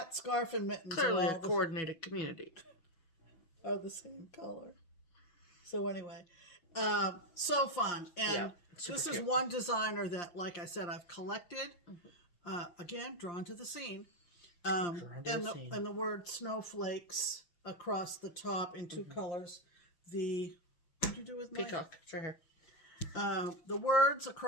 scarf, and mittens. Clearly a coordinated community. Are the same color. So anyway, so fun. And Super this cute. is one designer that, like I said, I've collected. Again, drawn to the scene. And the word snowflakes across the top in two colors. What did you do with my peacock? It's right here. The words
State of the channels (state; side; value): late; right; 5.7 ms